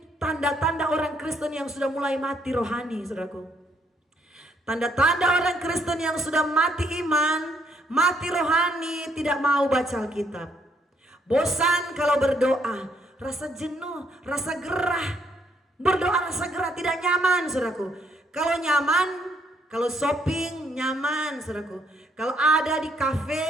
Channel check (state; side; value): normal; both; correlation 0.70